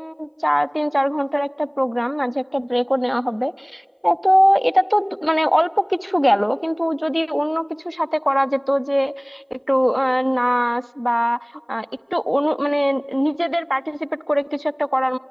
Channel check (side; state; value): both; identical; correlation 1.00